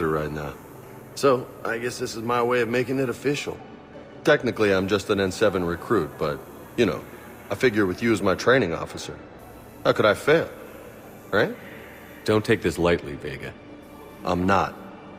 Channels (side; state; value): both; identical; correlation 1.00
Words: right now. So, I guess this is my way of making it official. Technically, I'm just an N7 recruit, but, you know, I figure with you as my training officer, how could I fail? Right? Don't take this lightly, Vega. I'm not,